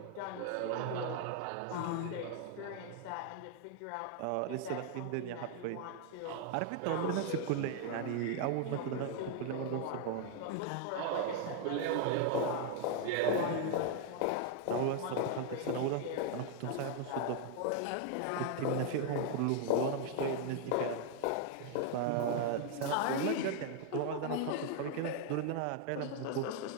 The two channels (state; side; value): different; both; correlation 0.00